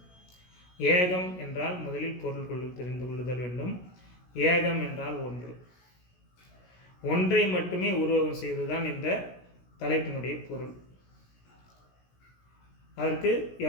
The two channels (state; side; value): late; right; 16 ms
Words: ஏகம் என்றால் முதலில் பொருள் தெரிந்து கொள்ளுதல் வேண்டும். ஏகம் என்றால் ஒன்று. ஒன்றை மட்டுமே உருவகம் செய்வதுதான் இந்த தலைப்பினுடைய பொருள். அதற்கு